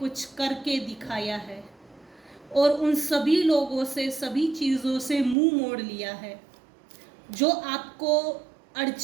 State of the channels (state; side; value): drops out; left; at 5.4 s